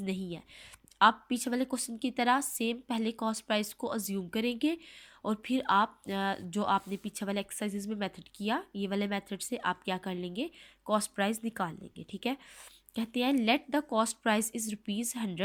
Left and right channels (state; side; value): identical; both; correlation 1.00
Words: नहीं है। आप पीछे वाले क्वेश्चन की तरह सेम पहले कॉस्ट प्राइस को अज्यूम करेंगे और फिर आप जो आपने पीछे वाले एक्सरसाइजेज में मेथड किया, ये वाले मेथड से आप क्या कर लेंगे, कॉस्ट प्राइस निकाल लेंगे, ठीक है। कहते हैं let the cost price is